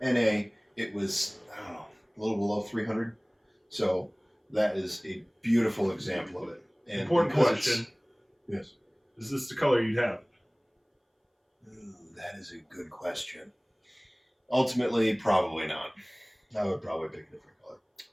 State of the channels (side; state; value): both; identical; correlation 1.00